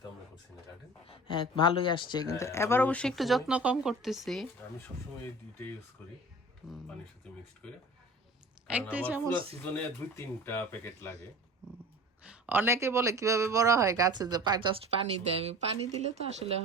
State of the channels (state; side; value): normal; both; correlation 0.40